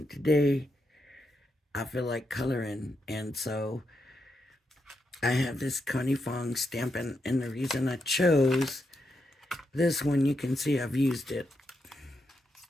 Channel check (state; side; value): normal; both; correlation 0.83